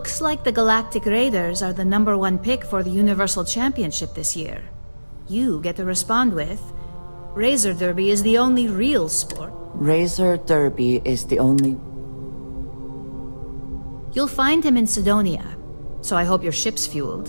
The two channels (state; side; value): inverted; both; correlation -1.00